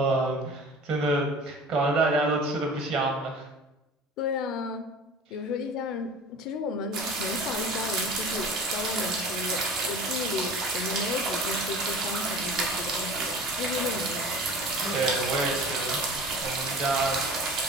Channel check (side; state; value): both; normal; correlation 0.40